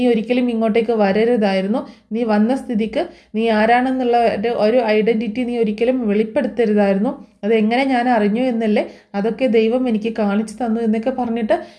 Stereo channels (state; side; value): identical; both; correlation 1.00